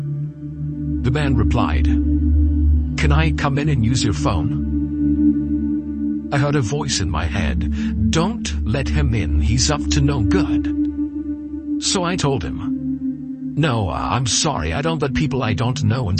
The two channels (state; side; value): identical; both; correlation 1.00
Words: The man replied, "Can I come in and use your phone?" I heard a voice in my head, "Don't let him in, he's up to no good." So I told him, "No, I'm sorry, I don't let people I don't know